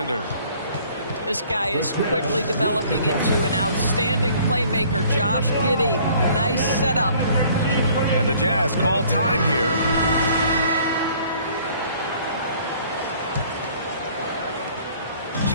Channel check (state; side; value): inverted; both; correlation -0.56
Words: This guy is quickly developing into an outstanding playmaker, Josh Giddey. Nice setup. And the Jazz call time here.